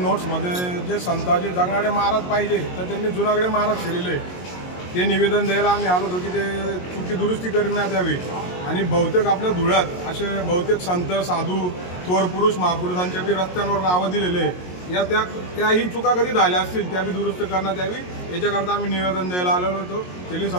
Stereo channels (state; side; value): late; right; 22 ms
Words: जे संताजी जगणारे महाराज पाहिजे तर त्यांनी जुनागडे महाराज केलेले ते निवेदन द्यायला आम्ही आलो होतो की ते चुकी दुरुस्ती करण्यात यावी। आणि बहुतेक आपल्या धुळ्यात असे बहुतेक संत साधू थोर पुरुष महापुरुषांच्या बी रस्त्यांवर नावं दिलेले या त्याही चुका कधी झाल्या असतील त्या बी दुरुस्त करण्यात यावी याच्याकरता आम्ही निवेदन द्यायला आलेलो होतो तेली